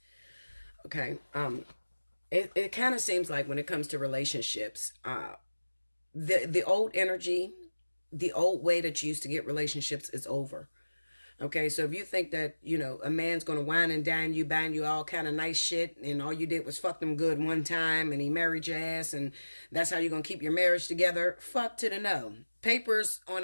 Okay? It kind of seems like when it comes to relationships, the old energy, the old way that you used to get relationships is over. Okay, so if you think that, you know, a man's going to wine and dine you, buying you all kind of nice shit, and all you did was fuck them good one time, and he married your ass, and that's how you're going to keep your marriage together, fuck to the no. Papers on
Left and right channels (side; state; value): both; inverted; correlation -1.00